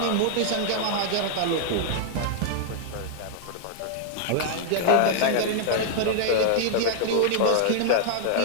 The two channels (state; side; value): different; both; correlation -0.01